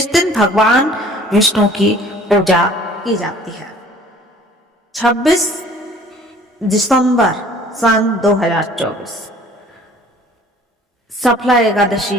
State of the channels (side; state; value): both; normal; correlation 0.52